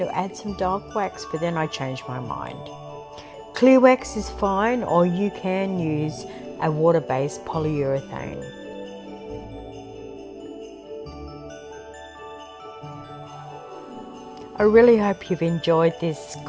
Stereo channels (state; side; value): identical; both; correlation 1.00